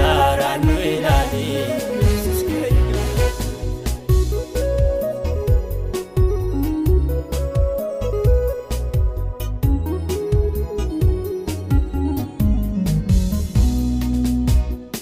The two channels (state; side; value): identical; both; correlation 1.00